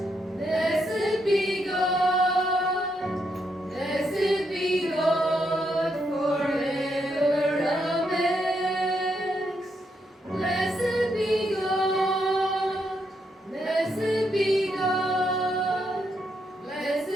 blessed be God, blessed be God forever. Amen. Blessed be God, blessed be God,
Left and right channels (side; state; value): both; normal; correlation 0.79